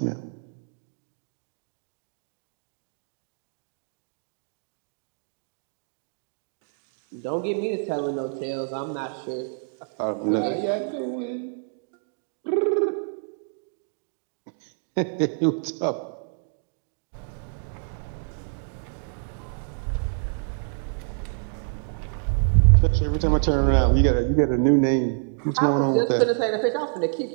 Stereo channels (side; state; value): left; silent; digital silence